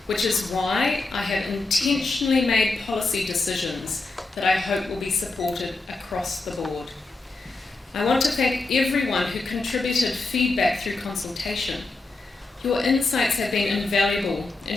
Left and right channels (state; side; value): quieter; right; 3.4 dB